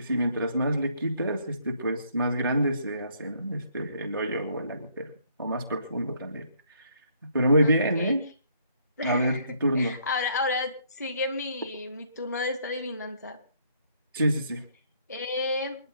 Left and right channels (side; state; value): both; inverted; correlation -0.67